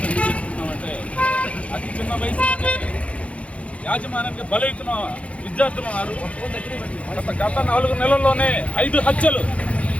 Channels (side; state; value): right; late; 0.063 ms